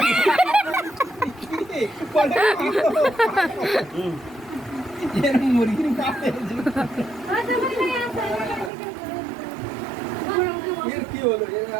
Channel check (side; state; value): left; drops out; at 8.7 s